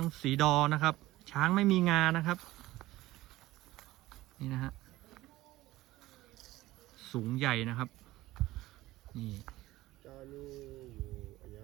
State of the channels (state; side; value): quieter; left; 17.2 dB